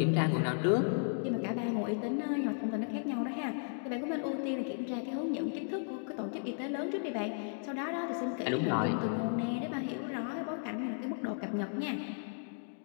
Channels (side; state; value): right; silent; digital silence